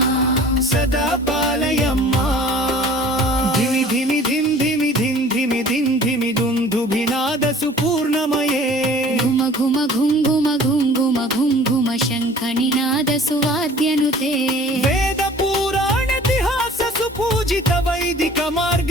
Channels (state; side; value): normal; both; correlation 0.48